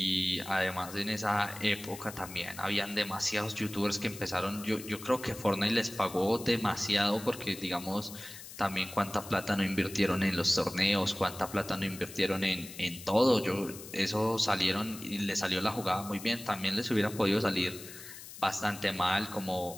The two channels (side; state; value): left; noise; hiss, 14 dB below the sound